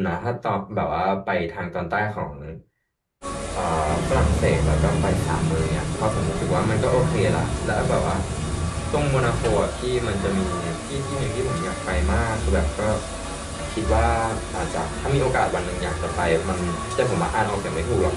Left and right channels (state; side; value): identical; both; correlation 1.00